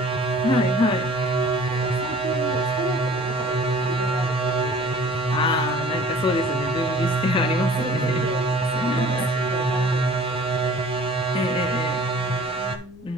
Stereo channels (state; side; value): noise; left; rumble, 24 dB below the sound